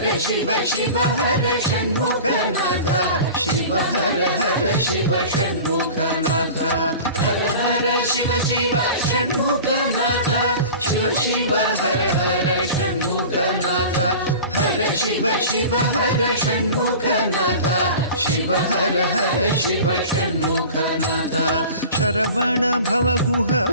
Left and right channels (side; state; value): both; inverted; correlation -0.38